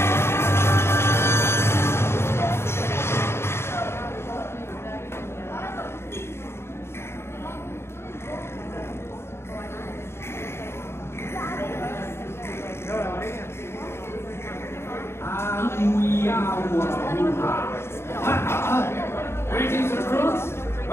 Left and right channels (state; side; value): late; right; 0.12 ms